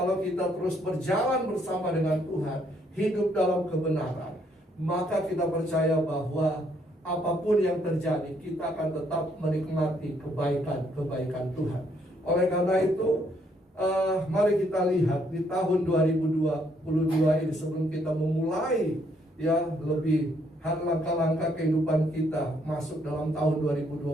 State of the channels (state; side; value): normal; both; correlation 0.70